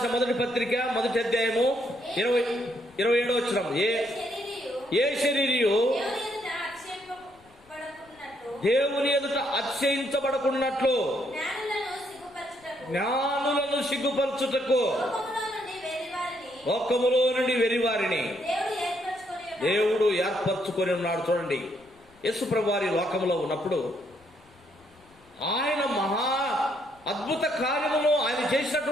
మొదటి పత్రిక 1వ అధ్యాయము 27వ వచనం. ఏ శరీరియు దేవుని ఎదుట అతిశయించబడకున్నట్లు జ్ఞానులను సిగ్గుపరచుటకు లోకములో నుండి వెరివారిని దేవుడు ఏర్పరచుకొని ఉన్నాడు. చూడండి, యేసుప్రభు వారి లోకములో ఉన్నప్పుడు ఆయన మహా అద్భుత కార్యమును, ఆయన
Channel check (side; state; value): left; noise; rumble, 30 dB below the sound